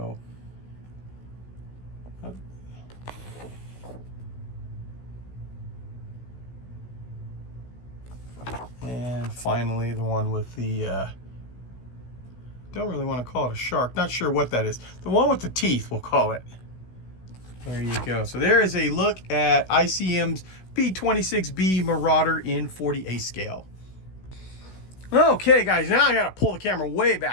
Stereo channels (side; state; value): right; late; 16 ms